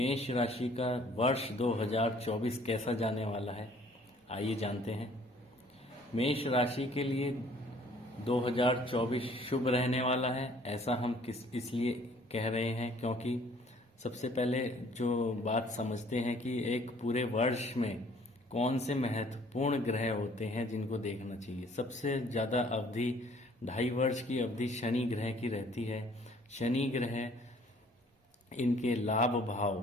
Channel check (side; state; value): both; normal; correlation 0.57